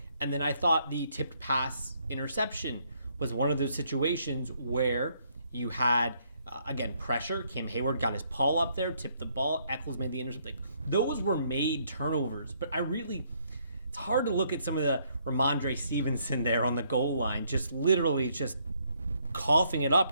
And then I thought the tipped pass interception was one of those situations where you had, again, pressure. Cam Hayward got his paw up there, tipped the ball. Eccles made the interception. Those were made turnovers. But it's hard to look at some of the Ramondre Stevenson there on the goal line, just literally just coughing it up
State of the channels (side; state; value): both; inverted; correlation -0.70